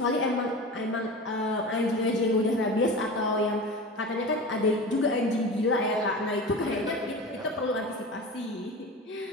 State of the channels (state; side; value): normal; both; correlation 0.31